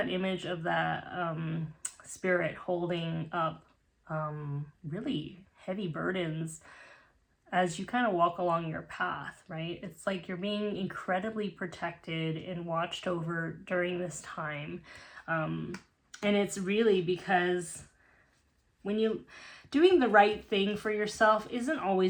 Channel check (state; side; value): identical; both; correlation 1.00